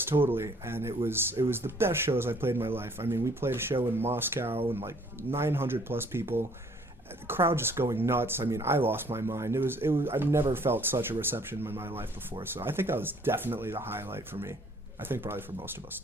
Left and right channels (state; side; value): normal; both; correlation 0.59